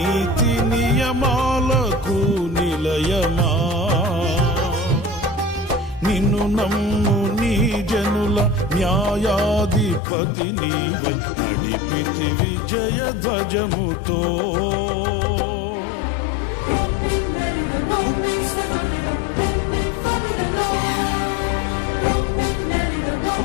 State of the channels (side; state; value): right; drops out; at 10.0 s